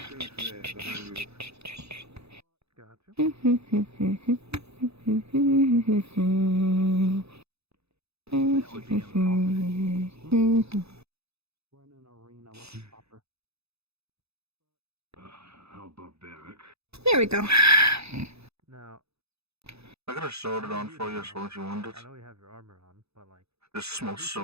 How barbaric. There we go. Now, I could have sewed it on for you as well if you wanted. I know you have your armor on, but like. This small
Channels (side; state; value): left; late; 0.79 ms